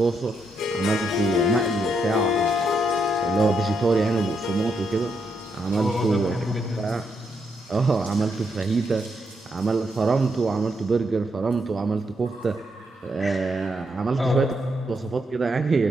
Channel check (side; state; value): both; normal; correlation 0.79